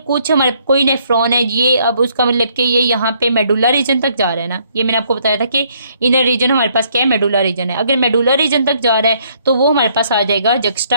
कुछ हमारे कोई नेफ्रॉन है ये, अब उसका मतलब कि ये यहाँ पे मेडुला रीजन तक जा रहा है ना, ये मैंने आपको बताया था कि इनर रीजन हमारे पास क्या है, मेडुला रीजन है। अगर मेडुला रीजन तक जा रहा है तो वो हमारे पास आ जाएगा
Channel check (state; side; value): inverted; both; correlation -0.67